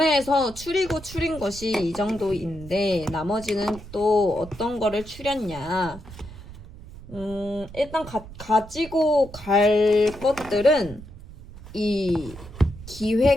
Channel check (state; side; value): noise; right; rumble, 15 dB below the sound